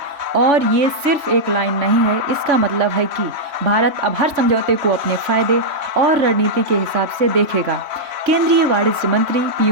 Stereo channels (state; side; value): late; left; 3.0 ms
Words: और ये सिर्फ एक लाइन नहीं है, इसका मतलब है कि भारत अब हर समझौते को अपने फायदे और रणनीति के हिसाब से देखेगा। केंद्रीय वाणिज्य मंत्री